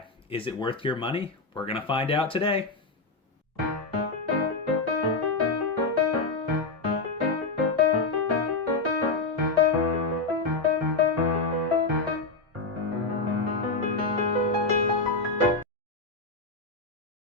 Is it worth your money? We're gonna find out today.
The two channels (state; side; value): quieter; right; 3.7 dB